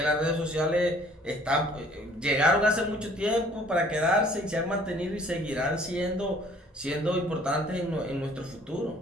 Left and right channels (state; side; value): normal; both; correlation 0.56